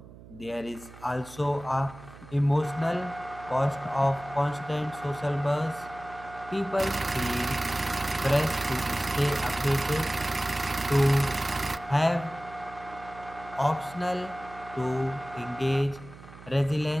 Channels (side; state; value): right; noise; hum, 18 dB below the sound